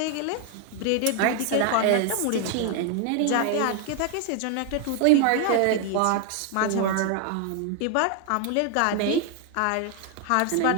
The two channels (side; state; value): both; different; correlation 0.01